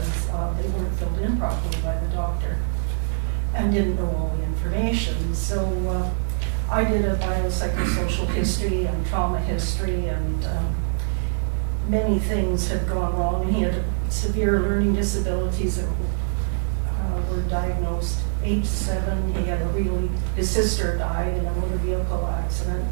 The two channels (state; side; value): silent; left; 63 dB below the other